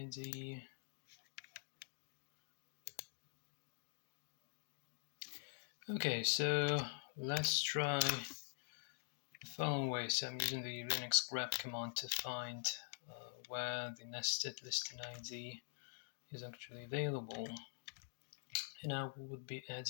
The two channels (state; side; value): silent; right; digital silence